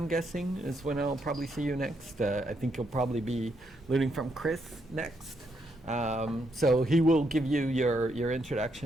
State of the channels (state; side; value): normal; both; correlation 0.77